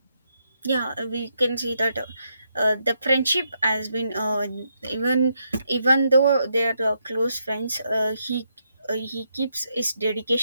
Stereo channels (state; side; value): inverted; both; correlation -0.79